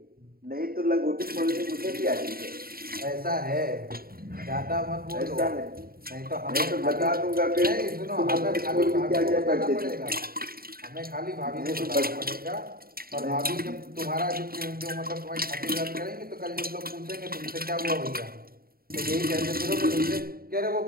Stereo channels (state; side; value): late; left; 0.43 ms